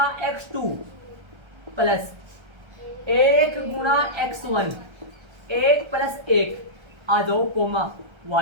x2 प्लस 1 गुणा x1 1 प्लस 1। आ जाओ कोमा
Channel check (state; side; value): late; left; 1.3 ms